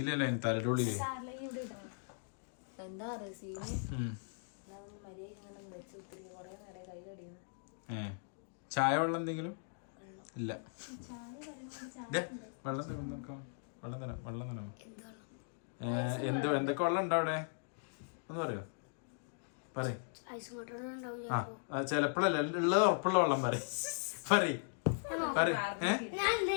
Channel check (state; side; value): silent; right; digital silence